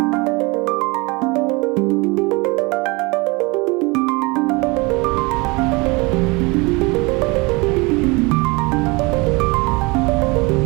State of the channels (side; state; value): left; quieter; 26.3 dB